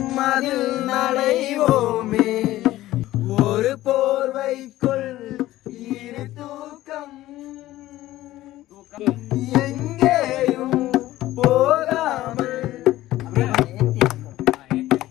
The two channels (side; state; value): right; quieter; 15.6 dB